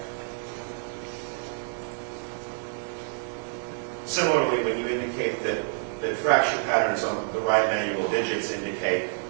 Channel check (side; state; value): left; silent; digital silence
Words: Similarly, when you indicate that fracture patterns on the right manual digits indicate